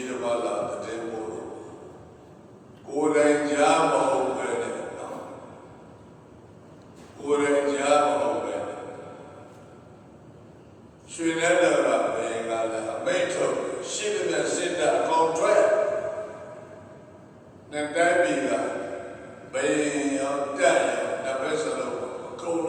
းတစ်ပါးလာတဲ့မို့ကိုယ်တိုင်ကြားမဟုတ်ပဲနဲ့ကိုယ်တိုင်ကြားမဟုတ်ပဲရွှေနဲ့တော့ဘယ်ကလည်းအမိတ်ထုတ်ရှင်းတဲ့စစ်တပ် contract နဲ့တိုင်းပြည်ကဘယ်ရောက်တက်ရောက်တစ်ဖက်စလုံးအကုန်လ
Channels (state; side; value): identical; both; correlation 1.00